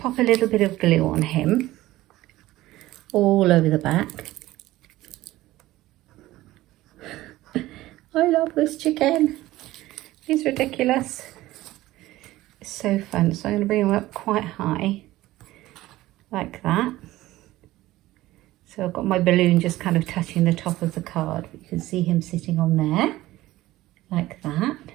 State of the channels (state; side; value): quieter; left; 16.7 dB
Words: a little bit of glue on him. all over the back. I love this chicken. He's ridiculous. It's so fun. So I'm going to bring him up quite high, like that. So I've got my balloon just kind of touching the top of the card. You can see him sitting on there, like that.